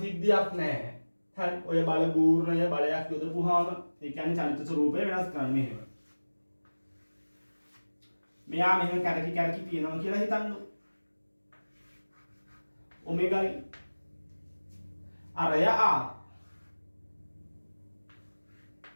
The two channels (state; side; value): inverted; both; correlation -1.00